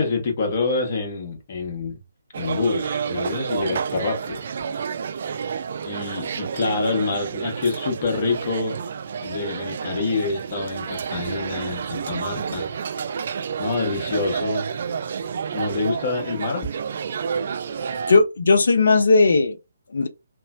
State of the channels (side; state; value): both; inverted; correlation -0.75